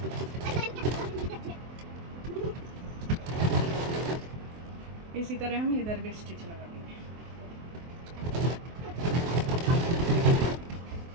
इसी तरह हम इधर भी स्टिच लगा देंगे।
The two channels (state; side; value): late; left; 23 ms